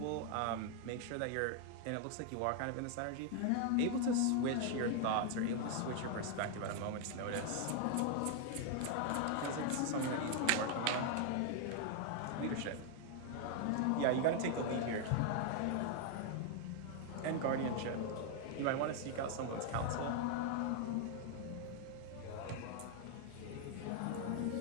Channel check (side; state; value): both; different; correlation 0.00